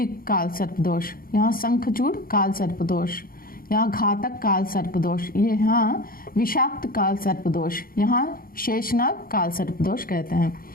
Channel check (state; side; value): late; right; 0.42 ms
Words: काल सर्प दोष, यहाँ शंखचूड़ काल सर्प दोष, यहाँ घातक काल सर्प दोष, यहाँ विषाक्त काल सर्प दोष, यहाँ शेषनाग काल सर्प दोष कहते हैं।